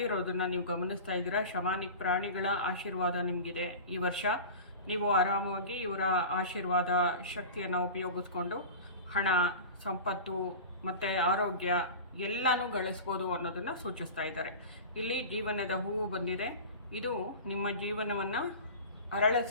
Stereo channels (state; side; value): inverted; both; correlation -0.33